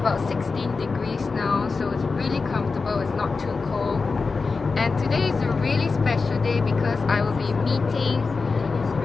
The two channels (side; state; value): right; quieter; 4.4 dB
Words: 16 degrees now, so it's really comfortable, it's not too cold. And today is a really special day because I will be meeting